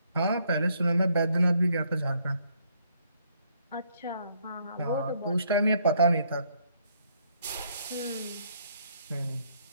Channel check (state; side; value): inverted; both; correlation -0.69